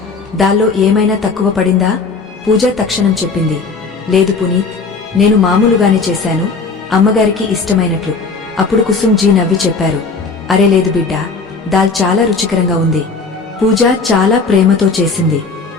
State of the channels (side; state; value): right; quieter; 4.3 dB